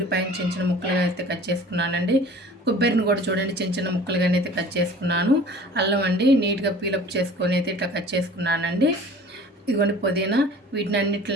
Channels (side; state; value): both; normal; correlation 0.45